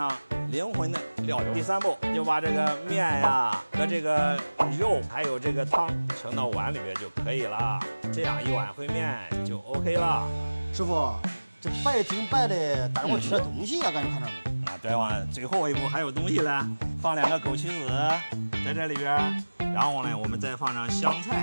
灵魂的料油。第3步就把这个面呀和这个肉还有这个汤盛到碗里边就可以了，这样一碗烩面就 OK 了。师傅，这白挺白的，但是我缺点东西啊，感觉看着。对吧？最后一步还有东西呢，放2个枸杞子在这里边，然后呢我们再放上香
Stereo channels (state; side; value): inverted; both; correlation -1.00